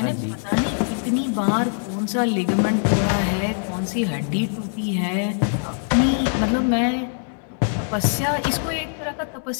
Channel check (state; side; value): silent; right; digital silence